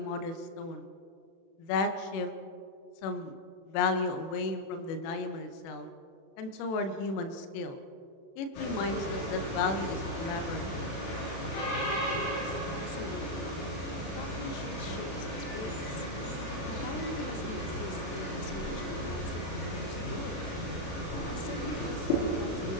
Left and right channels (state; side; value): late; right; 36 ms